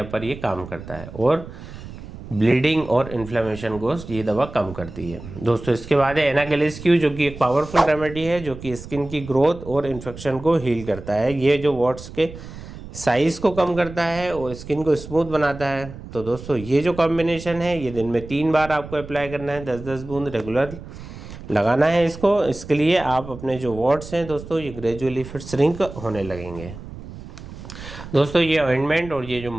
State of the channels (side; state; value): right; noise; rumble, 13 dB below the sound